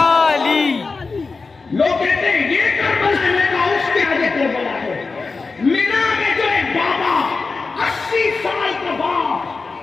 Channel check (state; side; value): quieter; right; 4.2 dB